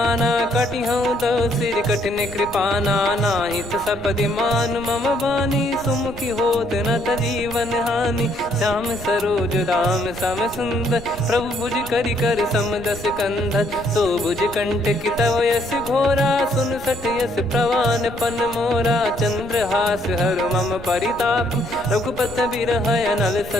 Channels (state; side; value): noise; right; rumble, 15 dB below the sound